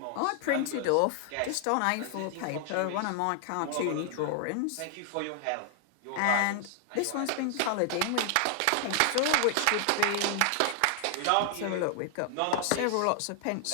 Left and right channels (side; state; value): both; different; correlation 0.00